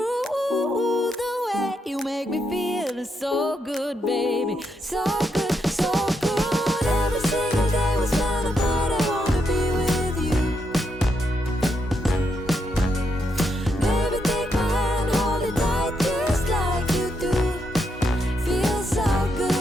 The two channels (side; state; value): both; normal; correlation 0.80